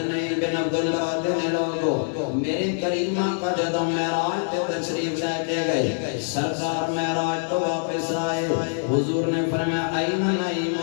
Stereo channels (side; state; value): right; silent; 62 dB below the other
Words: بن عبداللہ دینے لوگو میرے کریمہ کا جدو معراج تے تشریف لے کے گئے سرکار معراج تو واپس آئے حضور نے فرمایا این نعیم